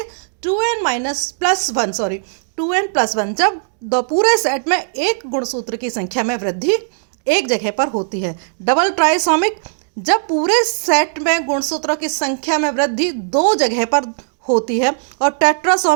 2n+1 जब पूरे सेट में एक गुणसूत्र की संख्या में वृद्धि एक जगह पर होती है। डबल ट्राइसोमिक जब पूरे सेट में गुणसूत्रों की संख्या में वृद्धि 2 जगह पर होती है। और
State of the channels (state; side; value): silent; left; digital silence